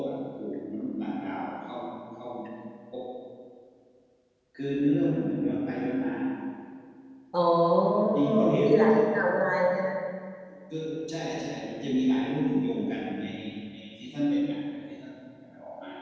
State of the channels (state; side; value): identical; both; correlation 1.00